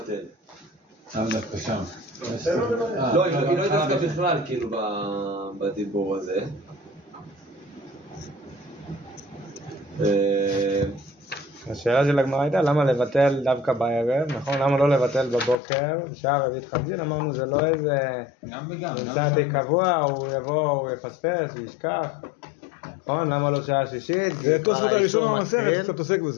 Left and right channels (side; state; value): right; drops out; at 15.6 s